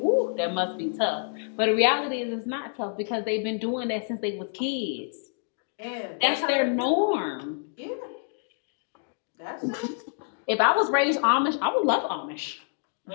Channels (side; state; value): right; silent; 60 dB below the other